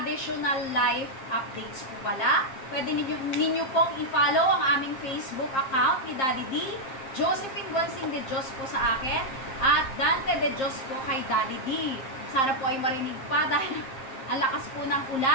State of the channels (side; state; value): right; late; 7.5 ms